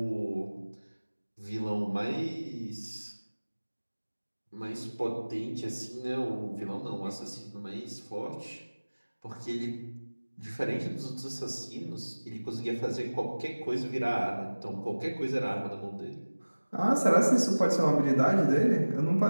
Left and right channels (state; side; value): inverted; both; correlation -1.00